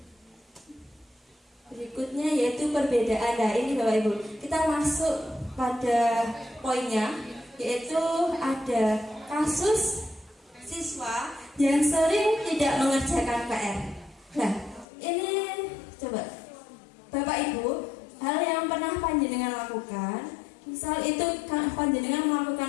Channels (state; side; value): drops out; right; at 14.9 s